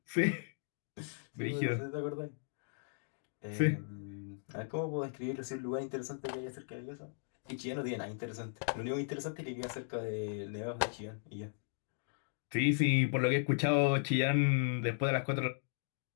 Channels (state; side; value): silent; right; digital silence